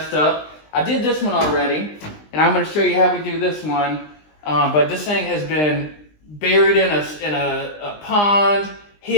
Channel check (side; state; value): right; late; 20 ms